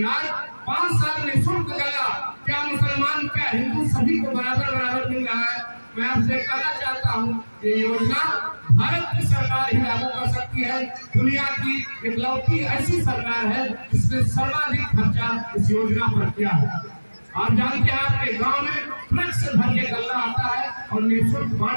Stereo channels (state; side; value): inverted; both; correlation -1.00